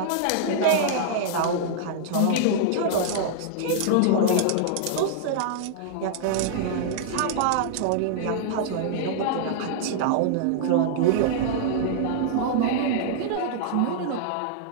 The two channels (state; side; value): different; both; correlation -0.01